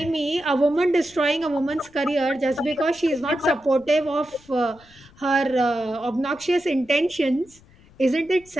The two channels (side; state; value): left; noise; rumble, 27 dB below the sound